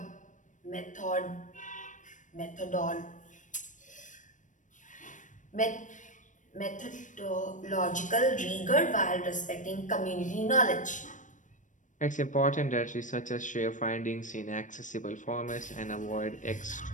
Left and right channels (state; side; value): late; right; 0.37 ms